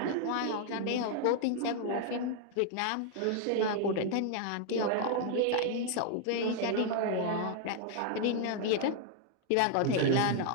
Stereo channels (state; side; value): different; both; correlation 0.00